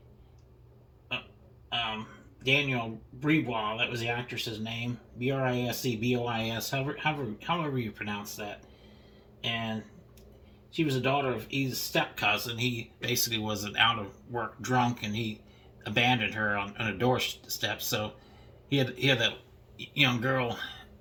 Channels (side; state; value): both; identical; correlation 1.00